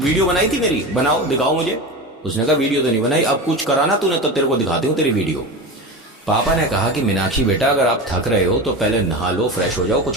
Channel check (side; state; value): both; normal; correlation 0.26